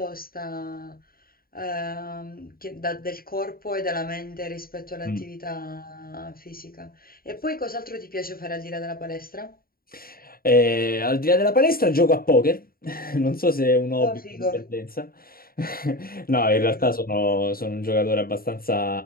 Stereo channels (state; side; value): late; right; 0.43 ms